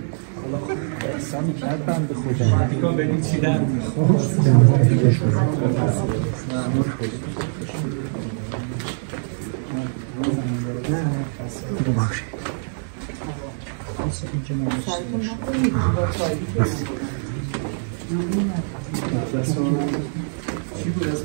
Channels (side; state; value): left; silent; digital silence